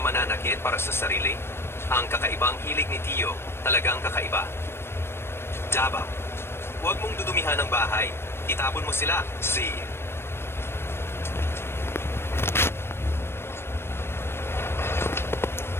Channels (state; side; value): late; right; 0.12 ms